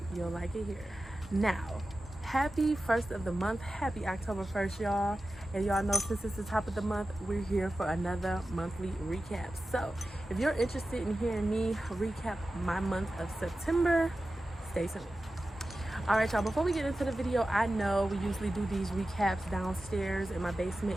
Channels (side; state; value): both; normal; correlation 0.94